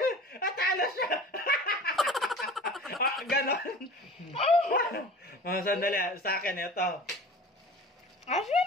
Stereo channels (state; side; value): normal; both; correlation 0.40